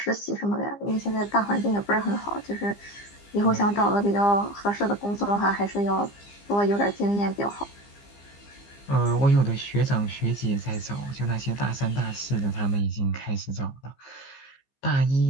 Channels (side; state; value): right; late; 15 ms